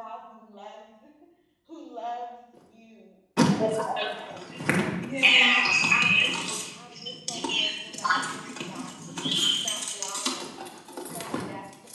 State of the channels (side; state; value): both; identical; correlation 1.00